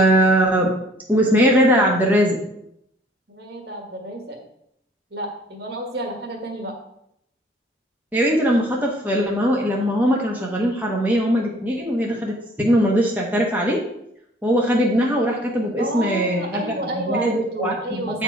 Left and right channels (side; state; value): both; normal; correlation 0.56